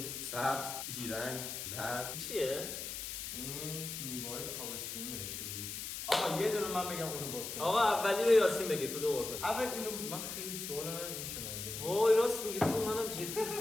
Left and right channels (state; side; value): noise; left; hiss, 6 dB below the sound